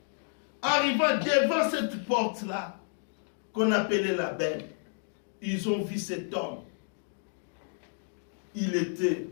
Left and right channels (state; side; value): silent; right; digital silence